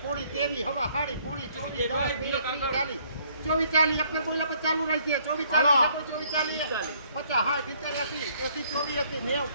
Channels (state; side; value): inverted; both; correlation -0.64